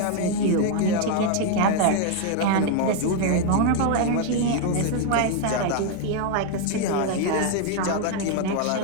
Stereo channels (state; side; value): different; both; correlation 0.01